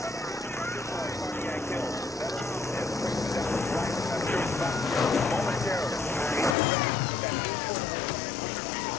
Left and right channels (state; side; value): drops out; right; at 6.6 s